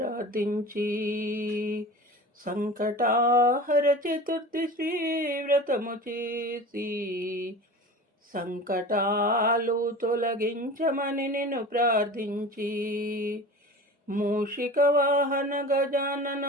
సంకటాహర చతుర్థి శ్రీ వ్రతము చేసి సంకటాలు తొలగించమని నిన్ను ప్రార్థించి మూషిక వాహన గజానన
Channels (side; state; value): both; normal; correlation 0.36